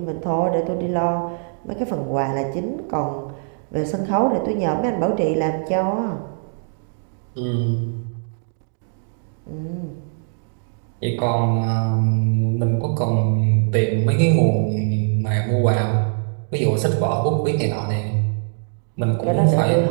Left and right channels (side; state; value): left; silent; digital silence